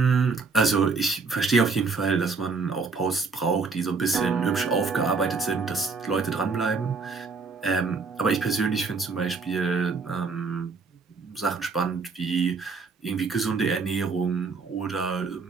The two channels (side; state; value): left; quieter; 4.6 dB